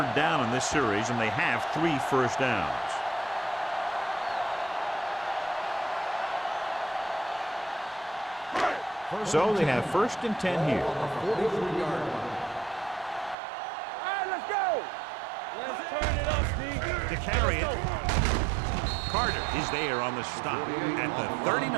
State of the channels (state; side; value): drops out; left; at 13.4 s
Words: down in this series, and they have 3 first downs. So they have first and 10 here. On the 43-yard line. All right, let's go. Let's turn it up, D. To carry it, Carter is there on the stop at the